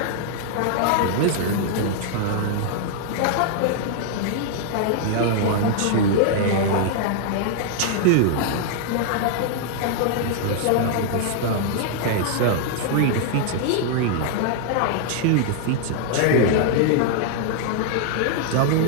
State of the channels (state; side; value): different; both; correlation -0.01